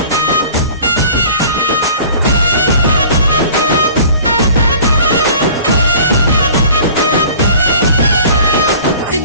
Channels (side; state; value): both; inverted; correlation -0.46